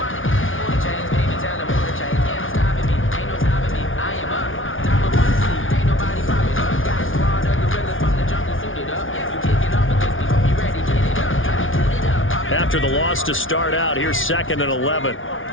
After the loss to start out, here's 2nd and 11.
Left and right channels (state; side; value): late; right; 0.57 ms